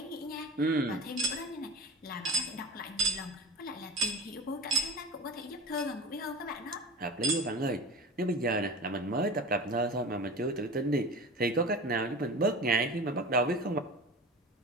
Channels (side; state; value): both; normal; correlation 0.32